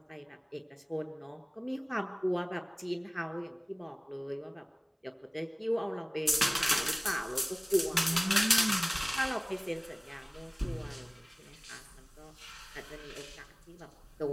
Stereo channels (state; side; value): identical; both; correlation 1.00